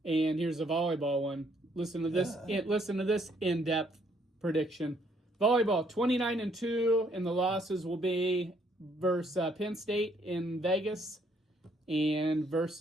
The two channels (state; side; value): normal; both; correlation 0.68